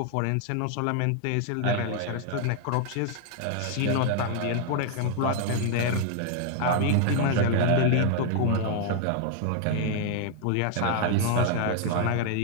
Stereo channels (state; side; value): different; both; correlation 0.00